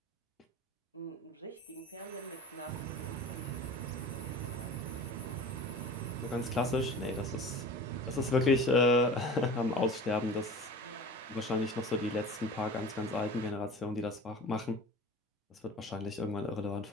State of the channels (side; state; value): both; normal; correlation 0.38